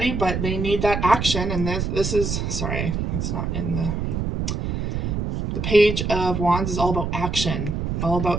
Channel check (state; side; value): noise; right; rumble, 2 dB below the sound